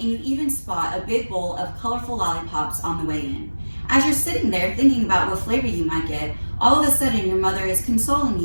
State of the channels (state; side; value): inverted; both; correlation -1.00